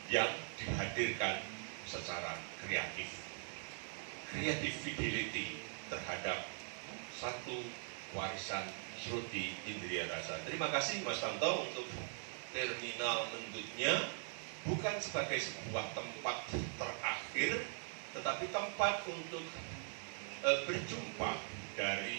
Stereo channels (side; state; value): left; silent; 50 dB below the other